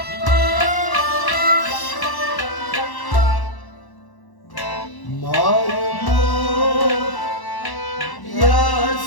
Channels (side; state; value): right; late; 1.1 ms